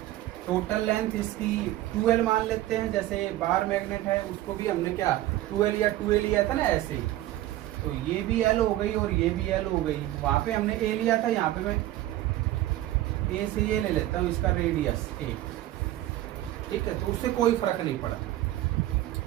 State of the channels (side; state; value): left; quieter; 15.0 dB